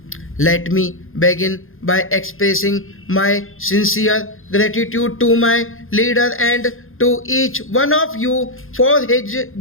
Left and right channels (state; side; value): late; right; 0.60 ms